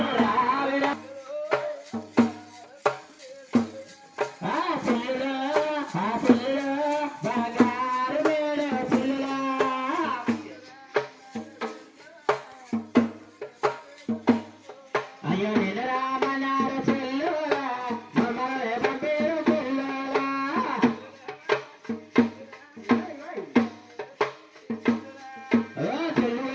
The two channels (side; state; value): both; identical; correlation 1.00